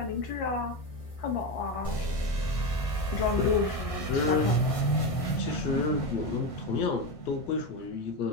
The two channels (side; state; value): right; late; 1.6 ms